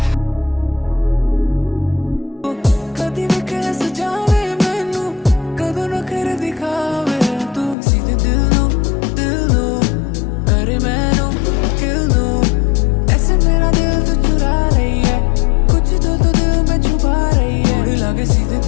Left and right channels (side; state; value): right; drops out; at 7.8 s